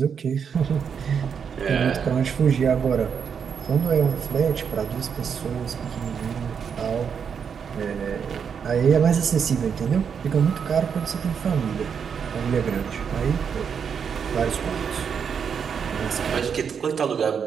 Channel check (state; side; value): quieter; left; 6.9 dB